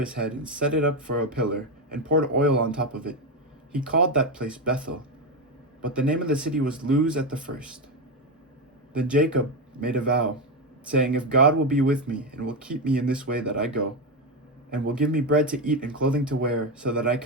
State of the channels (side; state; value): both; normal; correlation 0.11